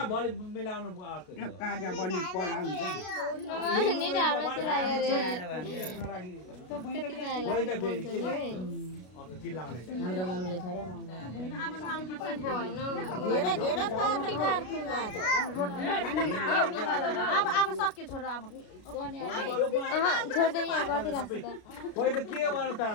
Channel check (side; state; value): right; late; 33 ms